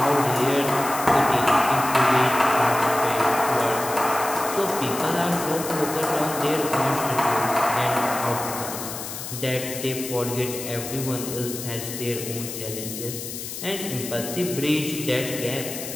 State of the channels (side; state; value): left; noise; hiss, 8 dB below the sound